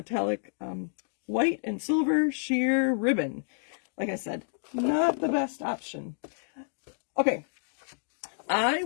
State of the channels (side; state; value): right; silent; digital silence